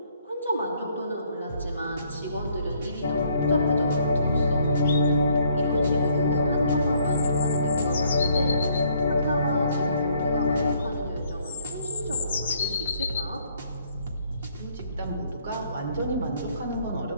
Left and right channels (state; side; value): inverted; both; correlation -0.66